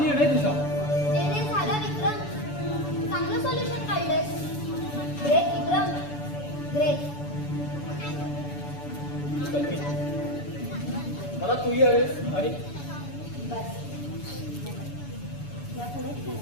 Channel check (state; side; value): late; right; 6.9 ms